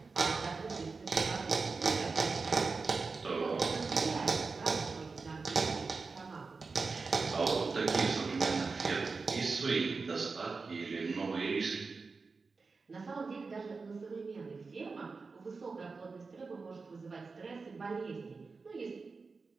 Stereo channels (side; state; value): left; quieter; 4.4 dB